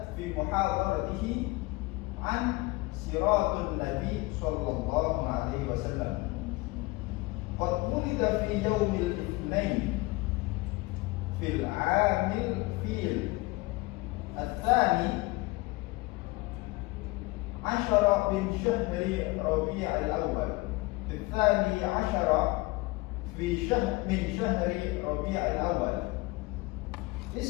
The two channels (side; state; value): right; quieter; 22.5 dB